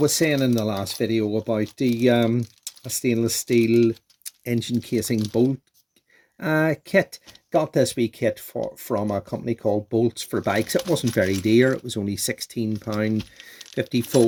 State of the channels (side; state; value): both; identical; correlation 1.00